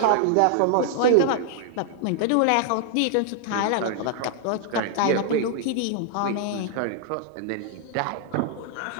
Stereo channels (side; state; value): both; different; correlation 0.00